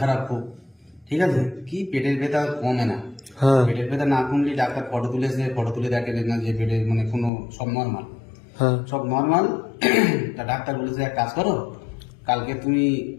খারাপ খুব। ঠিক আছে, কি পেটের ব্যথা কমে না। হ্যাঁ। পেটের ব্যথা না কমলে ডাক্তার ফটো তুলেছে, ফটো তুলে দেখে না যে পেটের মানে কোনো সব নর্মাল, হ্যাঁ। সব নর্মাল। তা ডাক্তার বলেছে এক কাজ করো, কালকে তুমি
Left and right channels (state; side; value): drops out; right; at 7.3 s